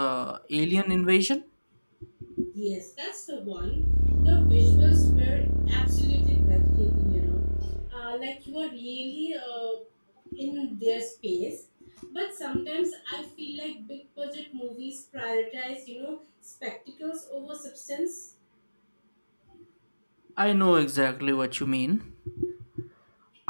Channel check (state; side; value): inverted; both; correlation -1.00